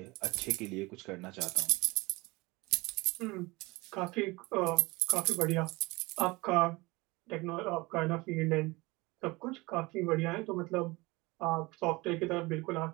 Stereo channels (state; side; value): quieter; left; 23.0 dB